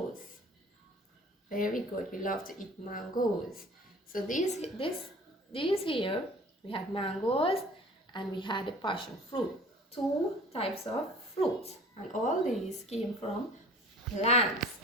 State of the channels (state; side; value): normal; both; correlation 0.46